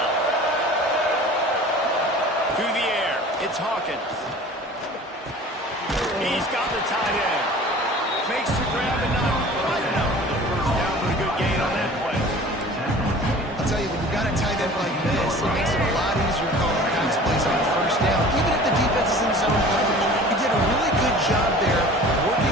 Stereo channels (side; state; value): both; normal; correlation 0.43